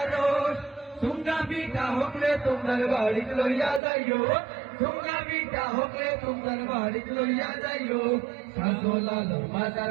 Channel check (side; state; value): left; drops out; at 3.8 s